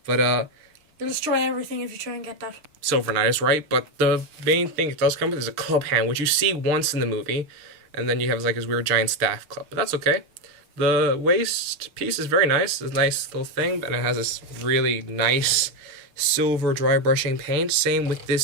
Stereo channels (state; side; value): late; left; 6.7 ms